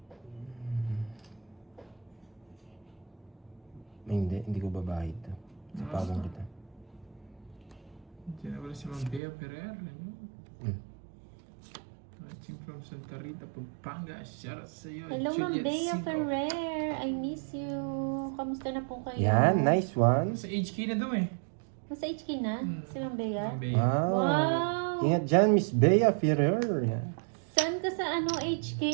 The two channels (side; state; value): left; drops out; at 9.2 s